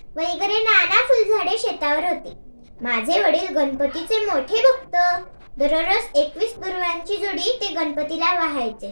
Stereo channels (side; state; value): both; inverted; correlation -1.00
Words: वगैरे नाना फुलझाडे शेतावर होती. माझे वडील गणपतीचे मोठे भक्त. दररोज 21 दुर्वांची जोडी ते गणपतीला वाहायचे.